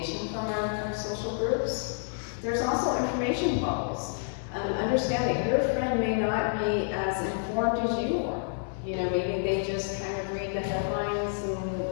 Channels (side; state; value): right; silent; 59 dB below the other